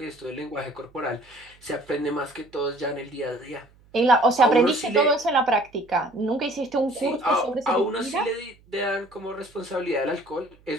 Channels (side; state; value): right; noise; hum, 29 dB below the sound